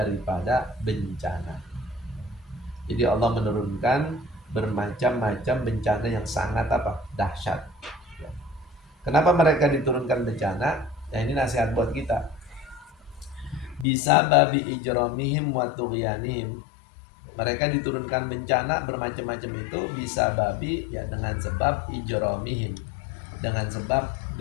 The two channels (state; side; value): drops out; right; at 13.9 s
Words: bencana. Jadi Allah menurunkan bermacam-macam bencana yang sangat dahsyat. Kenapa mereka diturunkan bencana? Ya, ini nasihat buat kita. Bisa babi ijramihim wa tughyanihim. Mereka diturunkan bencana bermacam-macam itu bisa babi ya dengan sebab ijramihim, dengan sebab